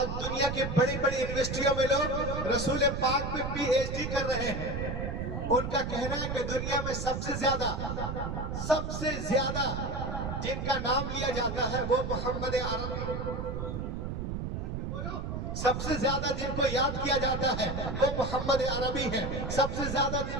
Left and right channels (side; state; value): right; noise; rumble, 4 dB below the sound